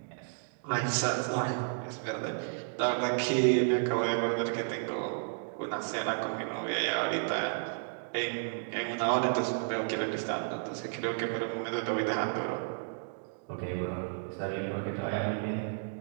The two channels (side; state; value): left; silent; digital silence